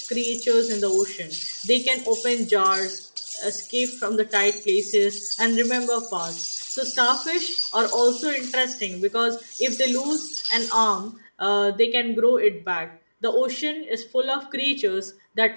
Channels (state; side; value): inverted; both; correlation -1.00